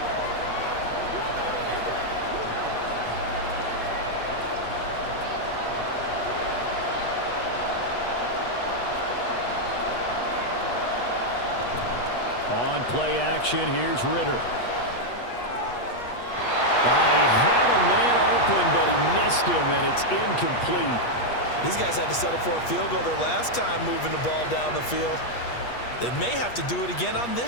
On play action, here's Ritter. He had a man open, but he missed him, and it's incomplete. These guys had to settle for a field goal their last time moving the ball down the field. They may have to do it again on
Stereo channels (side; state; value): right; late; 8.3 ms